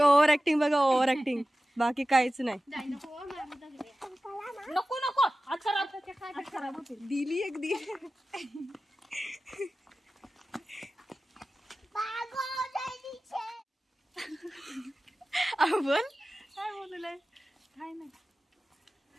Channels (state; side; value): normal; both; correlation 0.95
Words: बघा ओव्हर ऍक्टिंग, बाकी काहीच नाही. नको नको हात खराब होते. दिली एक दिली. बोल काय बोललंय काय नाही.